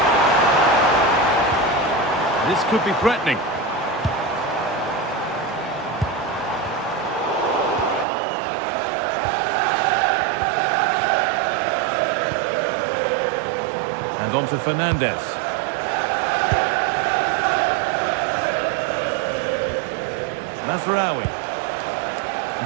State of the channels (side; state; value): left; drops out; at 8.1 s